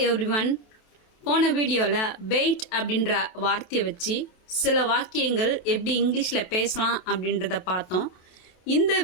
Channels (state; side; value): late; right; 27 ms